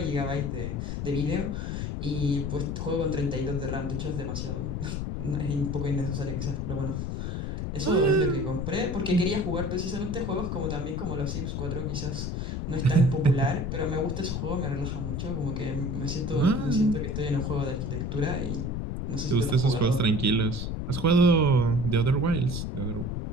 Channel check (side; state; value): left; noise; rumble, 3 dB below the sound